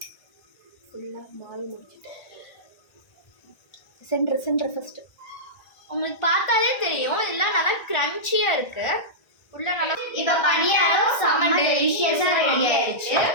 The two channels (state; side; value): late; right; 1.5 ms